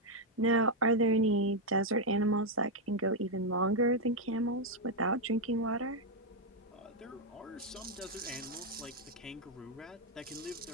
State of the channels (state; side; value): normal; both; correlation 0.01